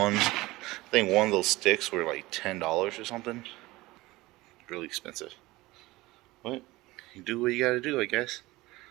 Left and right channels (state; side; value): quieter; left; 19.8 dB